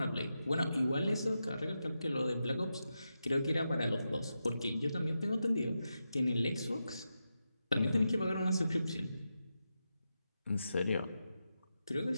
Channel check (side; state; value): both; inverted; correlation -0.89